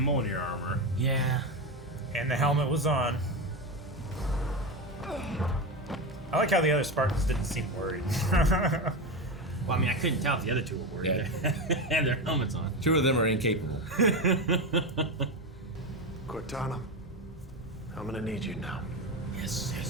armor. Yeah. And the helmet was on. I like how the other Spartans didn't seem worried. Well, I mean, I couldn't tell if the other two were worried. Yeah. They had their helmets on. 2 of them are incapable. Cortana, I'm gonna need you now. Yes.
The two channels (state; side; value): normal; both; correlation 0.17